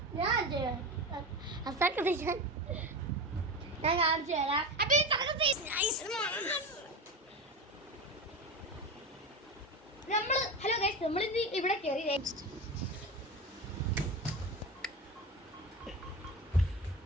ഞാൻ ചെയ്യാം. ഞാൻ കാണിച്ചു തരാം. ഹലോ ഗൈസ്, നമ്മളിന്ന് ഇവിടെ കയറി.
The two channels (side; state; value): both; normal; correlation 0.23